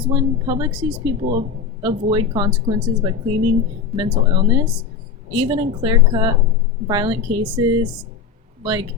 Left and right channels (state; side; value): quieter; right; 5.8 dB